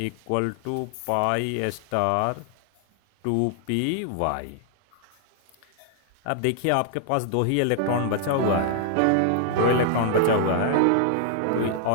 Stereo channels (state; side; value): different; both; correlation 0.00